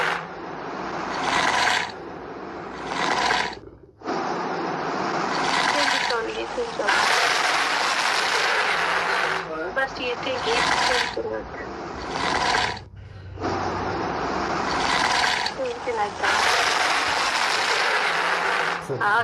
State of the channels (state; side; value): identical; both; correlation 1.00